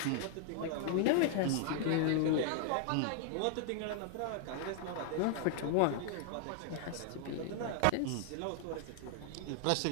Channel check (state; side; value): different; both; correlation 0.00